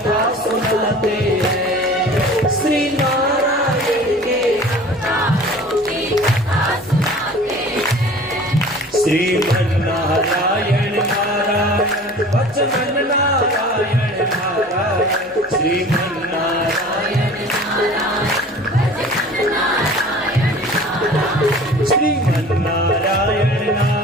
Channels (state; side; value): normal; both; correlation 0.43